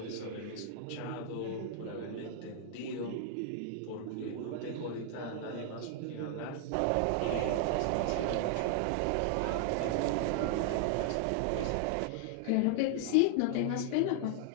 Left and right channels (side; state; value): both; different; correlation 0.00